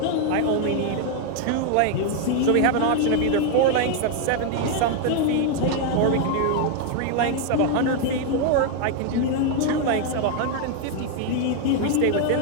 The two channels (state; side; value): different; both; correlation 0.00